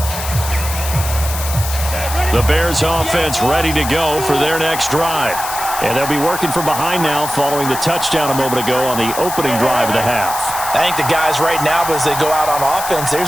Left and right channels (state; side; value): noise; left; hiss, 7 dB below the sound